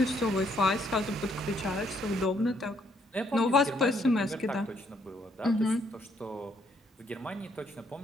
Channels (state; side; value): normal; both; correlation 0.70